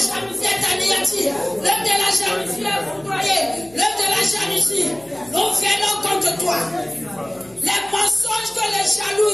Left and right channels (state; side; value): noise; left; hum, 26 dB below the sound